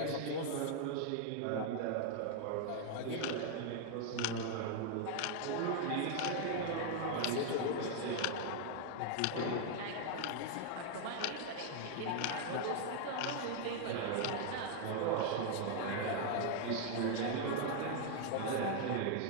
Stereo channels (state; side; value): different; both; correlation 0.00